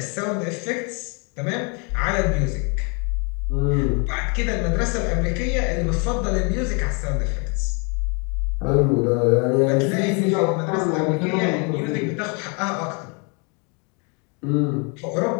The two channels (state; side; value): quieter; right; 34.3 dB